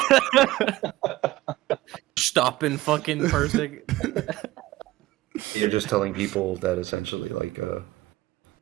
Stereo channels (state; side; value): quieter; left; 17.3 dB